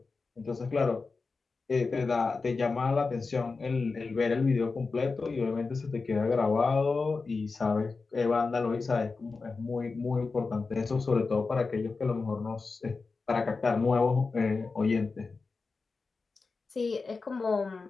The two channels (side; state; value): right; quieter; 4.3 dB